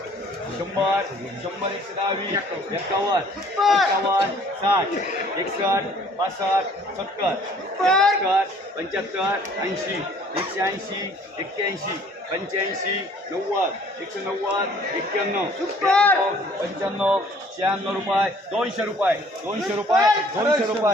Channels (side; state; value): both; normal; correlation 0.56